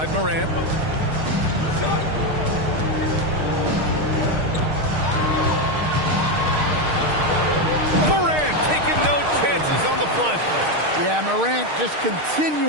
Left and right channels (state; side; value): late; left; 6.5 ms